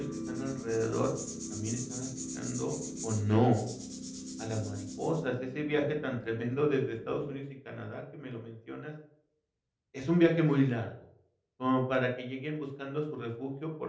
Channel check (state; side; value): identical; both; correlation 1.00